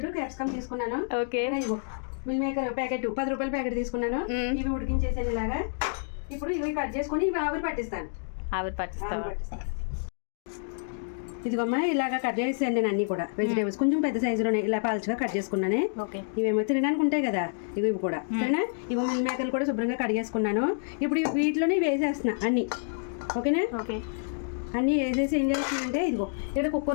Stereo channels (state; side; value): silent; right; digital silence